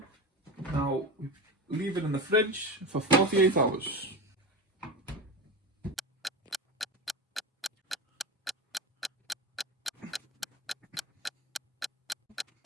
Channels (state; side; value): normal; both; correlation 0.24